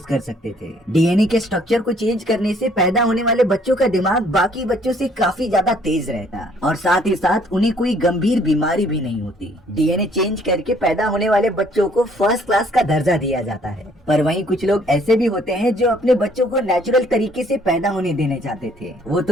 कर सकते थे। डीएनए के स्ट्रक्चर को चेंज करने से पैदा होने वाले बच्चों का दिमाग बाकी बच्चों से काफी ज्यादा तेज रहता और साथ ही साथ उन्हें कोई गंभीर बीमारी भी नहीं होती। डीएनए चेंज करके पैदा होने वाले बच्चों को फर्स्ट क्लास का दर्जा दिया जाता है। पर वहीं कुछ लोग ऐसे भी होते हैं जो अपने बच्चों को नेचुरल तरीके से पैदा होने देने चाहते थे। वो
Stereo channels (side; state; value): both; normal; correlation 0.62